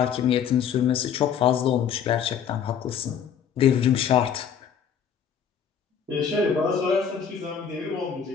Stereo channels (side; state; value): right; quieter; 7.8 dB